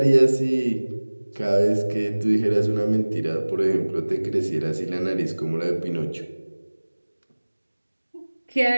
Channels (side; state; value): both; inverted; correlation -1.00